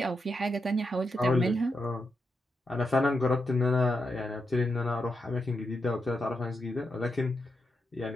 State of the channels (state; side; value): normal; both; correlation 0.85